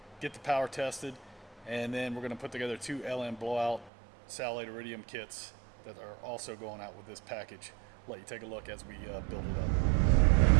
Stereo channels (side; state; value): left; drops out; at 3.9 s